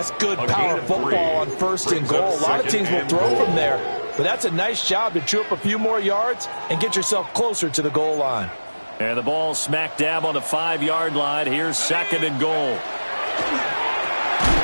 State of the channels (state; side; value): inverted; both; correlation -1.00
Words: good power football on first and goal. A lot of teams will throw from there, but that's a nice job to chew up a few more yards and get yourself closer to the goal line. And the ball smack dab on the 5-yard line. Here's second and goal.